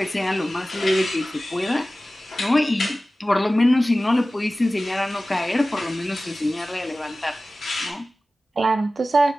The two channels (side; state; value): both; normal; correlation 0.96